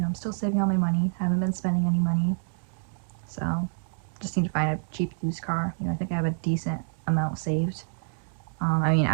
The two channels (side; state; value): left; silent; digital silence